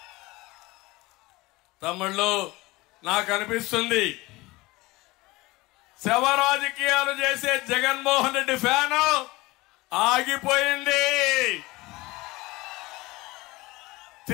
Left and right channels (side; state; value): right; quieter; 21.3 dB